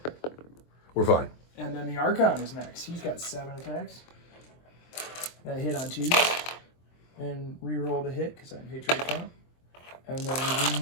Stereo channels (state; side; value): late; right; 23 ms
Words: We're fine. And then the Archon is next. He's got 7 attacks. That hit on 2s. And reroll the hit because I'm Hatred Account. And then